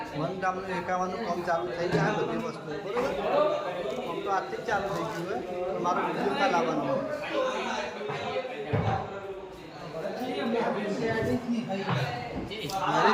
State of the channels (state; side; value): identical; both; correlation 1.00